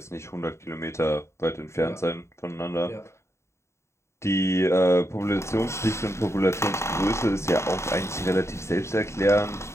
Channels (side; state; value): right; late; 0.13 ms